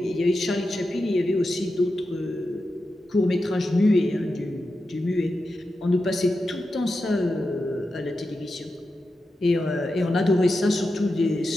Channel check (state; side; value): normal; both; correlation 0.90